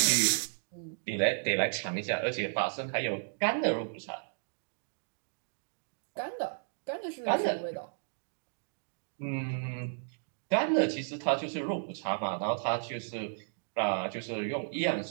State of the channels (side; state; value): left; silent; digital silence